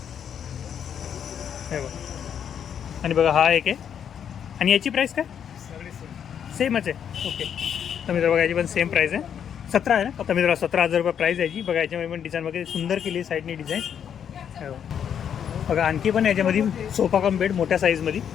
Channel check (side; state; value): right; quieter; 8.4 dB